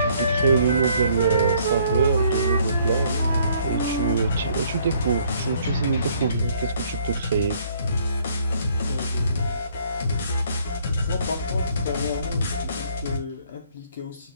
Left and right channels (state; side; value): inverted; both; correlation -0.63